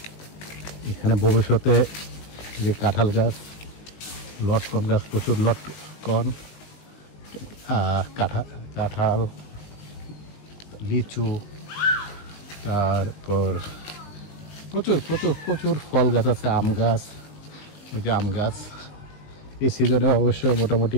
এখানে ভবিষ্যতে যে কাঁঠাল গাছ, লটকন গাছ, প্রচুর লটকন, কাঁঠাল, লিচু, তারপর প্রচুর প্রচুর প্রচুর ফল গাছ আছে, আম গাছ, ওই যে আম গাছ এই সিজনে অবশ্যই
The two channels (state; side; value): late; right; 19 ms